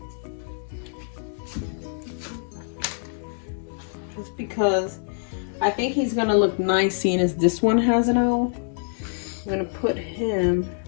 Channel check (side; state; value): right; silent; digital silence